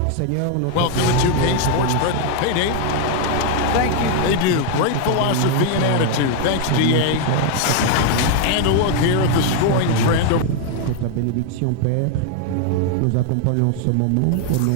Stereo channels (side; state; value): both; different; correlation 0.00